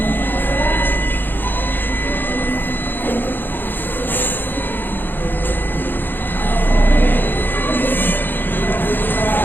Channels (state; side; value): late; right; 0.094 ms